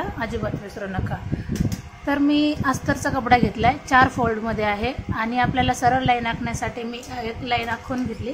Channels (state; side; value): identical; both; correlation 1.00